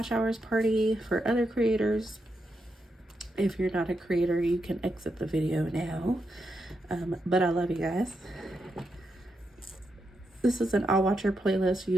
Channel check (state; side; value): normal; both; correlation 0.84